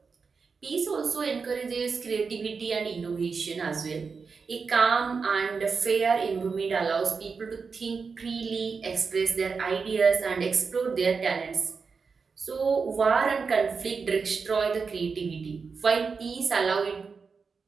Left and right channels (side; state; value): left; quieter; 5.1 dB